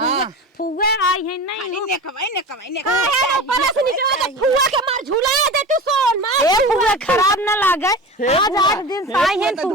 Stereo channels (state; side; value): normal; both; correlation 0.31